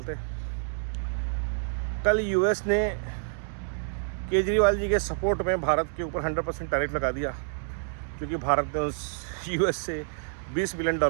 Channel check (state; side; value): silent; left; digital silence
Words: कल यूएस ने केजरीवाल जी के सपोर्ट में भारत के ऊपर 100% टैरिफ लगा दिया, क्योंकि भारत ने उस यूएस से $20 बिलियन